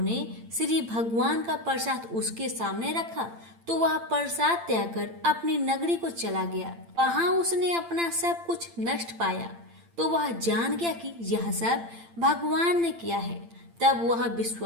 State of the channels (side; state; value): left; late; 8.8 ms